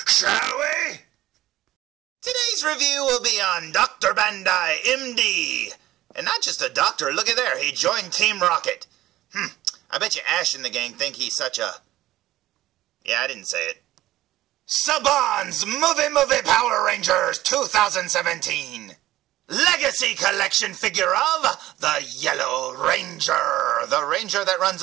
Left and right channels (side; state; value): left; quieter; 15.3 dB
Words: shall we? Today's review will be on Dr. Bandai, MD. And not just a doctor, look at there, he joined Team Rocket. I bet you Ash and the gang think he's such a... Yeah, I didn't say it. Saban's Movie Power Rangers 2017. Legacy Collection figure of the Yellow Ranger. The ranger that